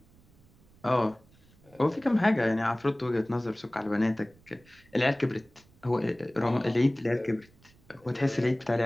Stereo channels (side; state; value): right; noise; rumble, 29 dB below the sound